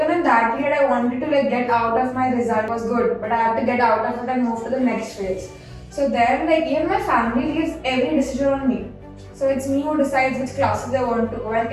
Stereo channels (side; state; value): both; identical; correlation 1.00